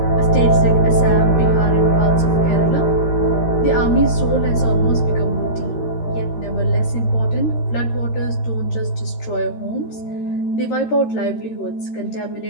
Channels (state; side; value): late; right; 13 ms